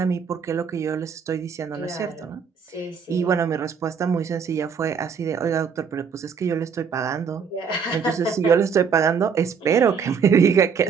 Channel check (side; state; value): left; quieter; 6.3 dB